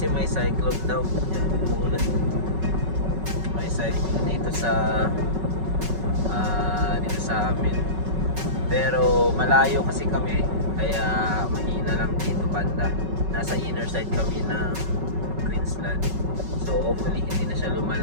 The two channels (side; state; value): left; late; 5.3 ms